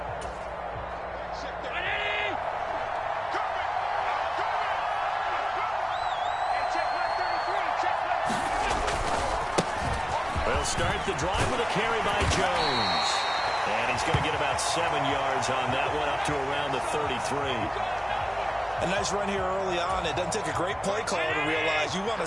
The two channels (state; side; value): identical; both; correlation 1.00